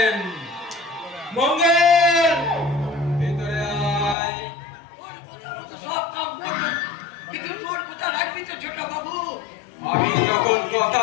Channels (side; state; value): right; drops out; at 4.2 s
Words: মঙ্গল ভিতরে আয়। সব কাম করো, কিন্তু তোর কথা রাখবি তো ছোট বাবু। আমি যখন কথা